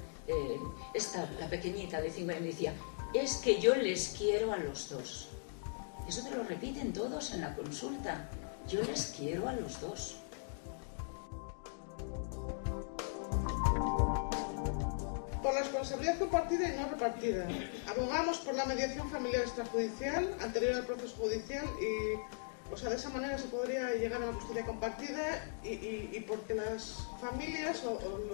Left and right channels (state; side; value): silent; right; digital silence